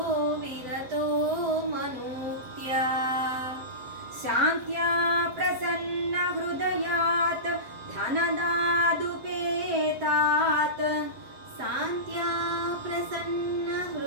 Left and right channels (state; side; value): late; left; 7.6 ms